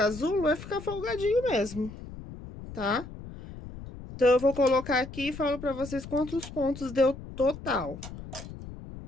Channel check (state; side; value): noise; left; rumble, 13 dB below the sound